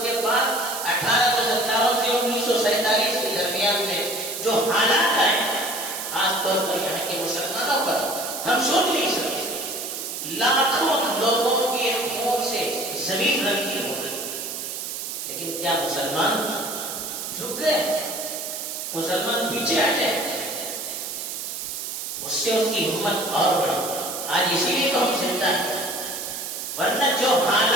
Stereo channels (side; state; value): right; noise; hiss, 6 dB below the sound